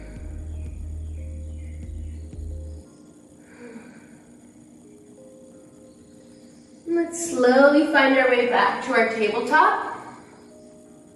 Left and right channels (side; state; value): both; identical; correlation 1.00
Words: slowly find our way back to our tabletop.